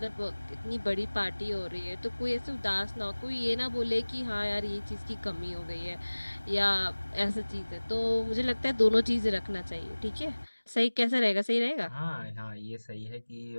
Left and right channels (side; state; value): both; inverted; correlation -1.00